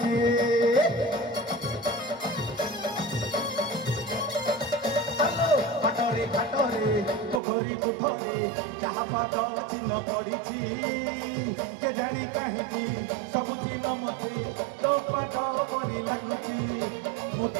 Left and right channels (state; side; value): drops out; left; at 7.4 s